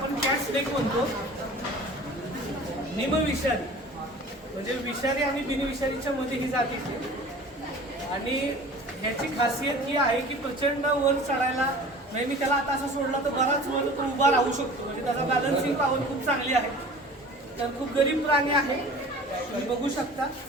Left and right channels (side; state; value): both; normal; correlation 0.43